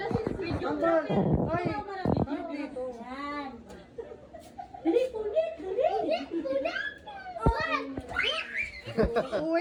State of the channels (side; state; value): both; identical; correlation 1.00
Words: siya video. Ambal! Ay! Video dito. Yan. Dali, punit.